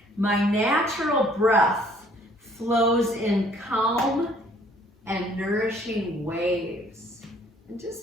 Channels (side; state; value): both; normal; correlation 0.59